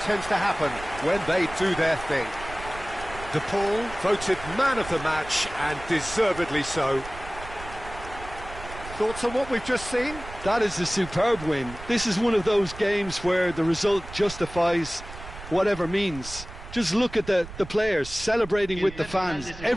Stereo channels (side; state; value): right; noise; rumble, 14 dB below the sound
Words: tends to happen when they do their thing. De Paul voted man of the match, and deservedly so. Thoughts on what we've just seen? That is a superb win. This is one of those games where the result justifies whatever means Just look at the players celebrating with the fans,